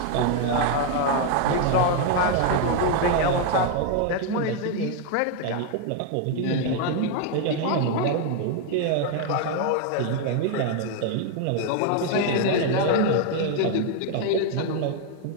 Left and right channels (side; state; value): both; different; correlation 0.00